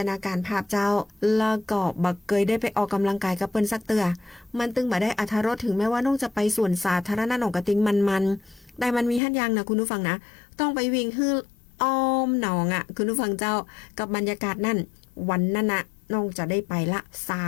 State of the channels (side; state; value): right; drops out; at 9.2 s